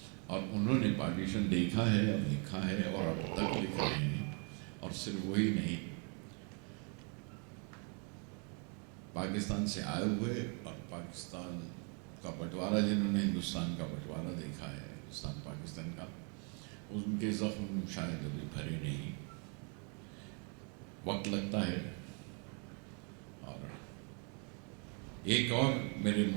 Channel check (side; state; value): left; quieter; 37.6 dB